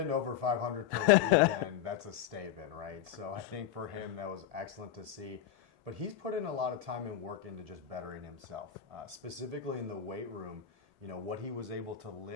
over 500 per weekend, that's a statement, right? So I think for him, that was excellent to see. But he's put in a lot of time and work into just bettering himself, specifically in the weight room. What he was able to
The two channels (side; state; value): right; quieter; 9.9 dB